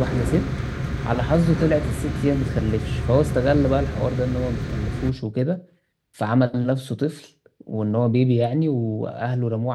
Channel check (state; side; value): identical; both; correlation 1.00